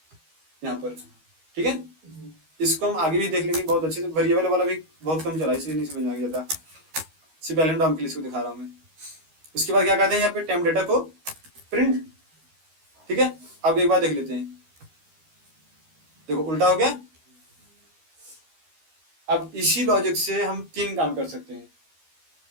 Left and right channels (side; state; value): left; late; 13 ms